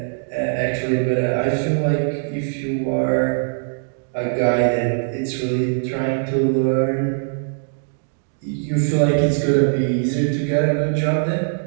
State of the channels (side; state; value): left; silent; digital silence